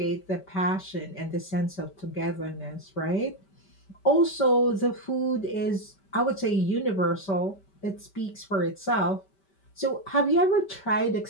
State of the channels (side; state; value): right; late; 5.2 ms